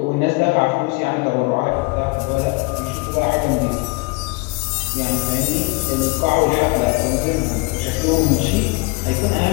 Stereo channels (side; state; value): right; quieter; 27.0 dB